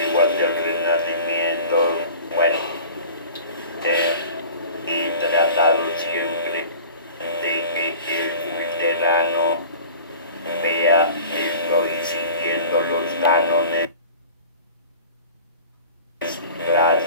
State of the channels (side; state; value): both; inverted; correlation -0.41